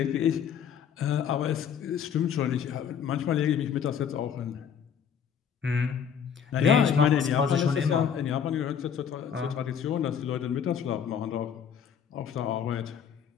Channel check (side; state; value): right; quieter; 7.8 dB